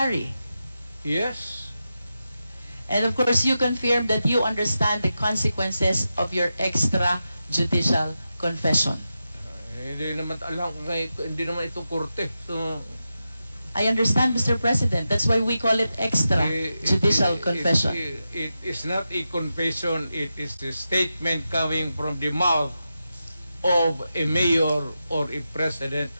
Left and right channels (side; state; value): both; inverted; correlation -0.90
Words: Yes. And of course, you confirm that you understand the consequences of your extrajudicial confession. Hindi naman alam kung hindi naman ito korte. So, I understand, Mr. President. That's why we call it extrajudicial confession. It is not a confession. It is a statement coming from the mouth of a mayor or a president